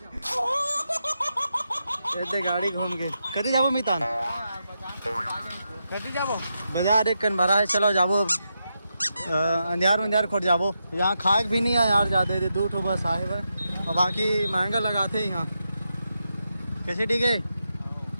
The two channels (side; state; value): both; inverted; correlation -0.86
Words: ऐसे गाड़ी घूम के कटी जाबो मितान, कटी जाबो बाजार एक कन भरा है। चलो जाबो अंधियार मंधियार खोट जाबो, यहाँ खाए भी नहीं है यार ज़्यादा, 2 ठो बस आए हुए और बाकी महंगा लगाते हैं यहाँ कैसे ठीक है।